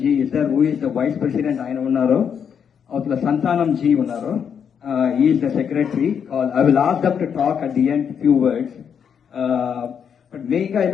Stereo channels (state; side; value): quieter; right; 7.5 dB